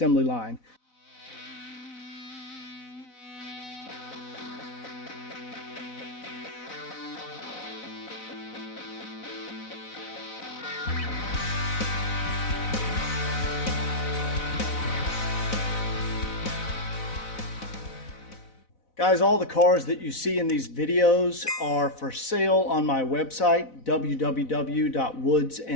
line. Guys, all the cars that you see in these videos are for sale on my website,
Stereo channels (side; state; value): right; late; 4.0 ms